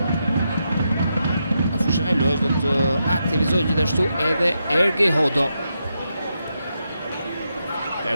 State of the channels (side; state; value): both; inverted; correlation -0.84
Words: Do të aktivizoj gjithashtu edhe Ergi Hodo.